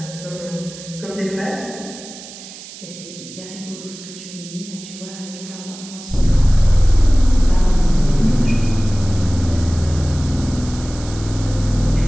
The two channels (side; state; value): right; noise; hiss, 15 dB below the sound